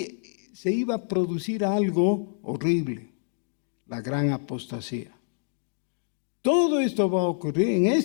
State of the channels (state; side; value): silent; right; digital silence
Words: se iba a producir algo horrible. La gran apostasía. Todo esto va a ocurrir en